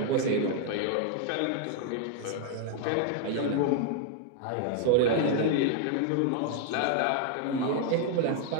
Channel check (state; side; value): different; both; correlation 0.00